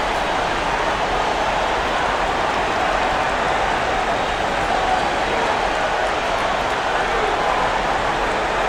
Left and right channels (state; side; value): identical; both; correlation 1.00